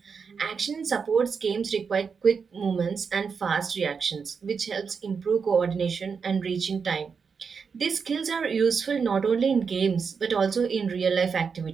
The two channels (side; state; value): left; quieter; 5.8 dB